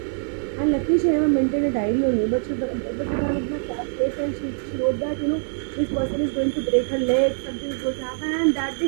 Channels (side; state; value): left; silent; digital silence